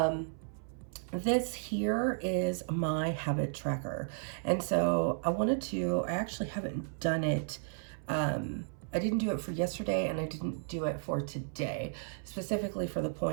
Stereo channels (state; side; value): silent; left; 55 dB below the other